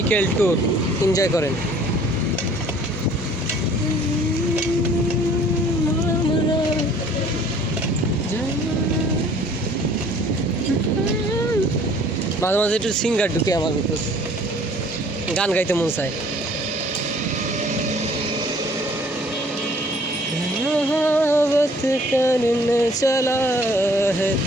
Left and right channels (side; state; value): both; normal; correlation 0.55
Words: tour, enjoy করেন। মাঝে মাঝে একটু সিঙ্গার ঢুকে আমার ভিতর, গান গাইতে মন চায়। मोहब्बत करने चला है